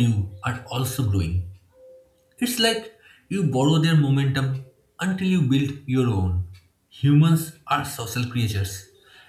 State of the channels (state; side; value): identical; both; correlation 1.00